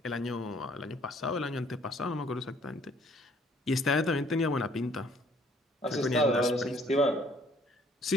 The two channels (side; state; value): both; normal; correlation 0.60